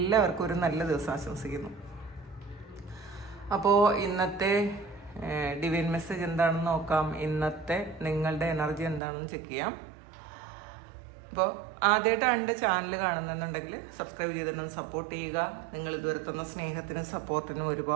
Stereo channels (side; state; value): left; drops out; at 9.0 s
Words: ഒരു നല്ല ദിവസം ആശംസിക്കുന്നു. അപ്പോൾ ഇന്നത്തെ ഡിവൈൻ മെസ്സേജ് എന്താണെന്ന് നോക്കാം. ഇന്നത്തെ നിങ്ങളുടെ എനർജി എന്താണെന്ന് ചെക്ക് ചെയ്യാം. അപ്പോൾ ആദ്യമായിട്ടാണ് എൻ്റെ ചാനൽ കാണുന്നുണ്ടെങ്കിൽ സബ്സ്ക്രൈബ് ചെയ്തിട്ടൊന്ന് സപ്പോർട്ട് ചെയ്യുക. നിങ്ങൾ ഇതുവരെ തന്ന സ്നേഹത്തിനും സപ്പോർട്ടിനും